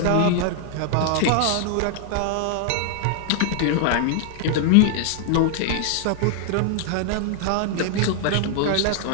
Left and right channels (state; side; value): different; both; correlation 0.00